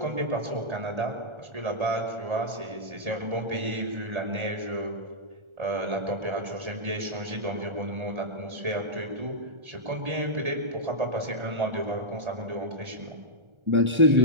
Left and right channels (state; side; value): late; left; 1.4 ms